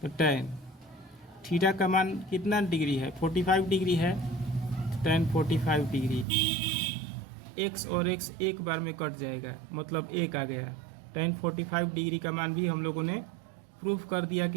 तो टैन थीटा का मान कितना डिग्री है? 45 डिग्री है, टैन 45 डिग्री, एक्स और एक्स एक बार में कट जाएगा, मतलब 1 आ गया। टैन 45 डिग्री का मान भी हम लोगों ने प्रूफ कर दिया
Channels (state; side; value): drops out; left; at 6.2 s